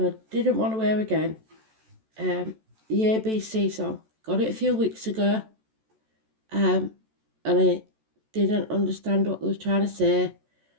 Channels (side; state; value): left; late; 14 ms